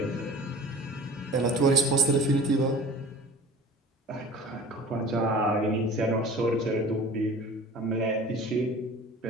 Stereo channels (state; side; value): normal; both; correlation 0.42